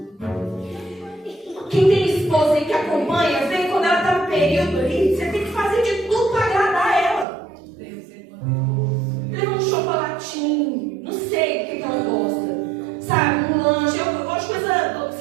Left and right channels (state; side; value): drops out; left; at 7.2 s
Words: Quem tem esposa aí que acompanha, vê quando ela está no período ali, você tem que fazer de tudo para agradar ela. Leva um chocolatinho, não sei o que ela gosta, sabe, um lanche, eu gosto de coisa